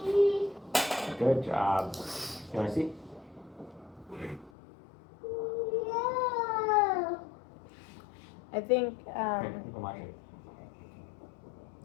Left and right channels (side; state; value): right; drops out; at 4.5 s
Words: Good job. You want to see? I think